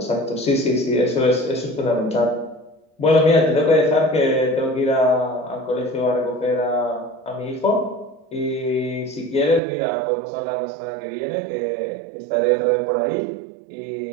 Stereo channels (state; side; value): drops out; left; at 9.6 s